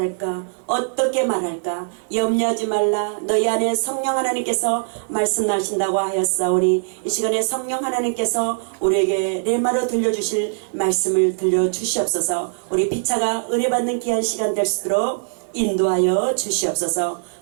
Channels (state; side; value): silent; left; digital silence